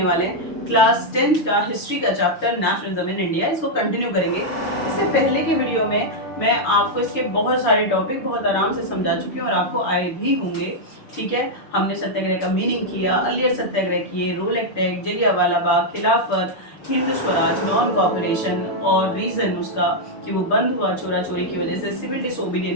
वाले हैं, क्लास 10th का हिस्ट्री का चैप्टर नेशनलिज्म इन इंडिया, इसको कंटिन्यू करेंगे। इससे पहले की वीडियो में मैं आपको इसके बहुत सारे टॉपिक बहुत आराम से समझा चुकी हूँ और आपको आए भी होंगे। ठीक है, हमने सत्याग्रह का मीनिंग किया, अलियर सत्याग्रह किए, रोल एक्ट, जलियांवाला बाग, खिलाफत, हिंद स्वराज, नॉन कॉपरेशन और रीजन उसका कि वो बंद हुआ चोरा चोरी की वजह से, सिविल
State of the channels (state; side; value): late; right; 6.1 ms